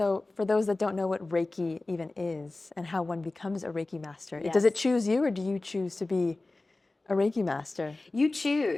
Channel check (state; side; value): quieter; right; 3.1 dB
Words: for those that don't know what Reiki even is and how one becomes a Reiki master, Yes. does it choose you, or do you choose to be a Reiki master? You